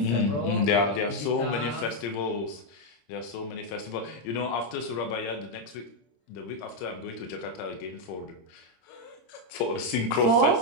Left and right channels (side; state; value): right; late; 26 ms